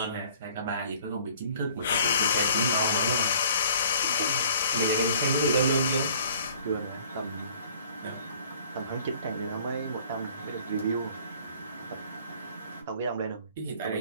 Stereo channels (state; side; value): inverted; both; correlation -0.54